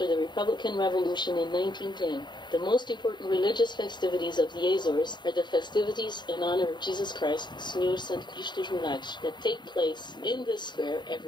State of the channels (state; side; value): late; right; 0.22 ms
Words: the Republican Revolution in 1910. The most important religious festivities of the Azores are the festivities in honor of Jesus Christ, Senhor Santo Cristo dos Milagres, that take place in this square